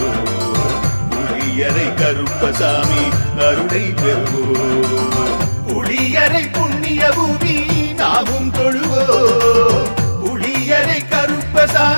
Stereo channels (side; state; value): both; inverted; correlation -1.00